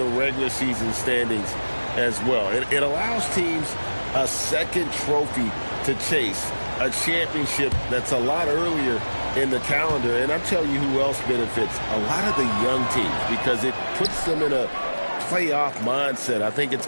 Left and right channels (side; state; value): both; inverted; correlation -1.00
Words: regular season standings as well. It allows teams a second trophy to chase, a championship that's a lot earlier in the calendar. And I'm telling you who else benefits, a lot of the young teams, because it puts them in a playoff mindset. I think it's